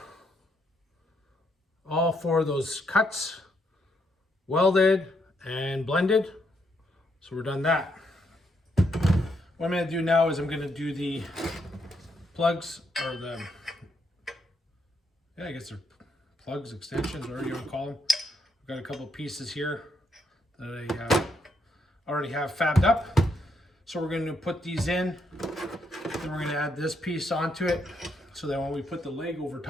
all 4 of those cuts welded and blended. So we're done that. What I'm going to do now is I'm going to do the plugs, or the, yeah, I guess they're plugs, extensions, whatever you want to call them. I've got a couple pieces here that I already have fabbed up. So we're going to put these in, then we're going to add this piece onto it, so that when we put the leg over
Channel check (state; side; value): normal; both; correlation 0.76